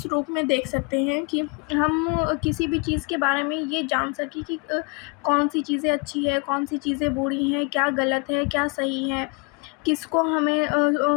रूप में देख सकते हैं कि हम किसी भी चीज़ के बारे में ये जान सकें कि कौन सी चीज़ें अच्छी है, कौन सी चीज़ें बुरी हैं, क्या गलत है, क्या सही है, किसको हमें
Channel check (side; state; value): right; quieter; 31.8 dB